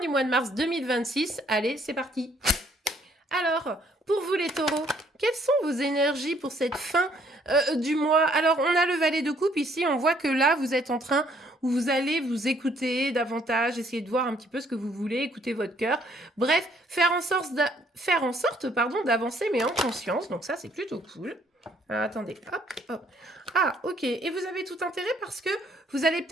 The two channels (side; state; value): both; normal; correlation 0.65